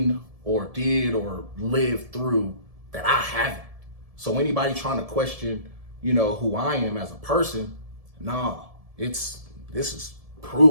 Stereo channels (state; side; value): late; left; 1.7 ms